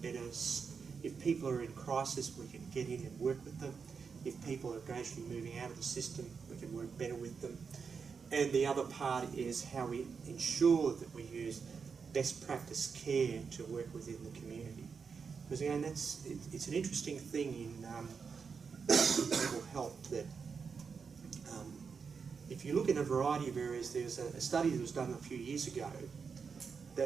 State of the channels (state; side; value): quieter; left; 5.7 dB